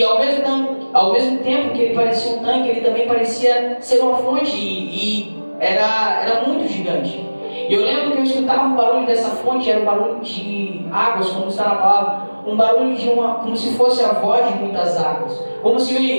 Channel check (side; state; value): both; inverted; correlation -1.00